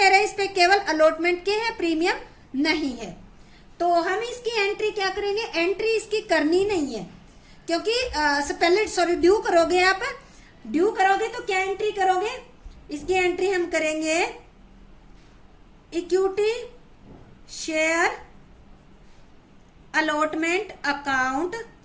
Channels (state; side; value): identical; both; correlation 1.00